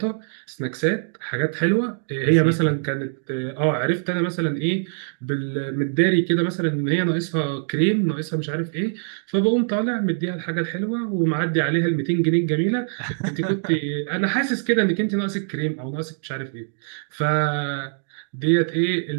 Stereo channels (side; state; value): left; silent; digital silence